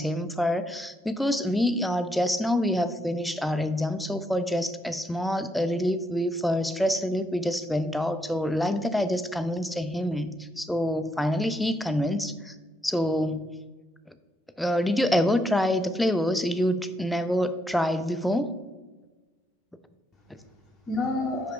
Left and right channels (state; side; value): normal; both; correlation 0.78